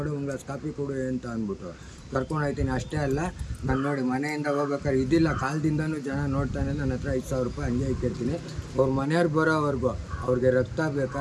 ಒಂದು ಗ್ಲಾಸ್ ಕಾಫಿ ಕೊಡು ಅಂತ ಅಂದ್ಬಿಟ್ಟು ಕರ್ಕೊಂಡು ಹೋಗ್ತೀನಿ. ಅಷ್ಟೇ ಅಲ್ಲ, ನಾನು ನೋಡಿ ಮನೆಯಿಂದ ಹೋಗ್ಬೇಕಾದ್ರೆ ಇದಿಲ್ಲ, ಕಾಲದಿಂದನೂ ಜನ ನೋಡ್ತಾನೆ ನನ್ನ ಹತ್ರ 5,000 ರೂಪಾಯಿ ಹಂಗೆ ಇಕ್ಕಿರ್ತೀನಿ. ಅವ್ರ ಮನೆಯವ್ರು ಬರೋವರೆಗೂ ಅವ್ರಿಗೆ ರಕ್ತ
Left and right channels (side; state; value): both; identical; correlation 1.00